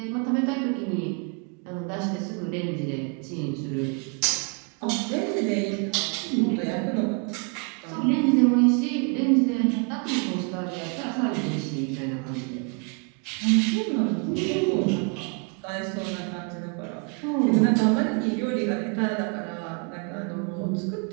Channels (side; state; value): left; quieter; 36.2 dB